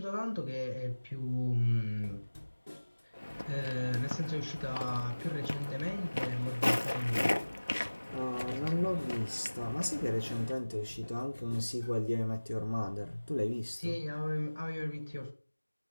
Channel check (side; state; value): both; inverted; correlation -1.00